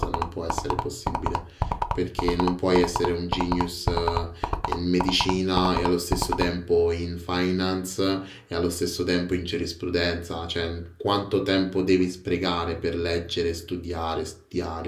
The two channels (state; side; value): identical; both; correlation 1.00